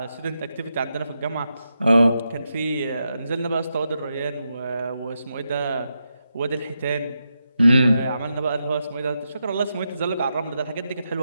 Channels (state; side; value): inverted; both; correlation -0.85